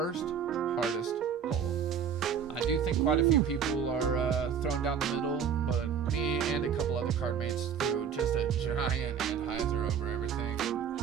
hardest hole. I do think quite a few people are thrown down the middle, but me and a couple other card mates threw just a giant Anheuser over everything and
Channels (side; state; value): left; quieter; 7.4 dB